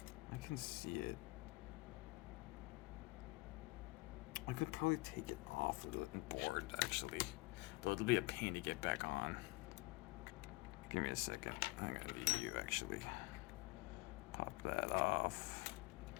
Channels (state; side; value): quieter; right; 23.7 dB